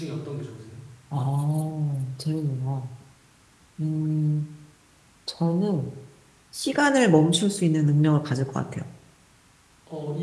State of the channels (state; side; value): identical; both; correlation 1.00